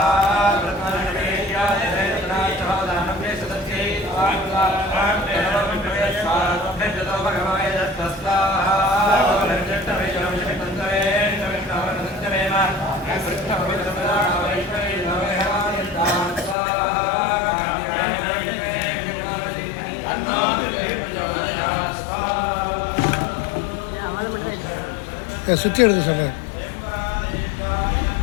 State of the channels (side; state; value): right; drops out; at 16.6 s